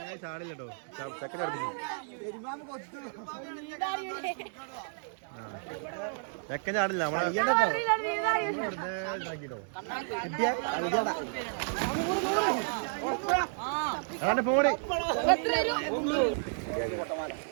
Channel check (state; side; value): silent; left; digital silence